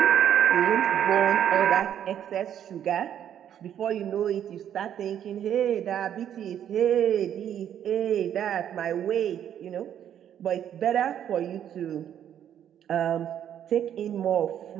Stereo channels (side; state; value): left; quieter; 9.9 dB